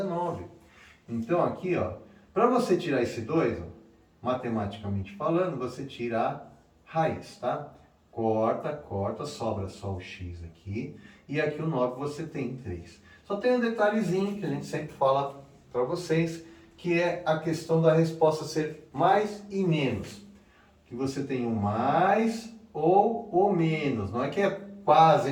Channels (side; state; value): both; identical; correlation 1.00